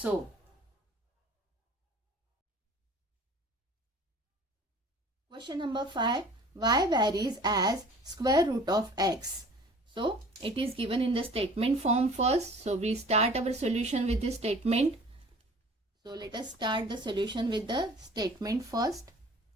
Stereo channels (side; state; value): both; normal; correlation 0.48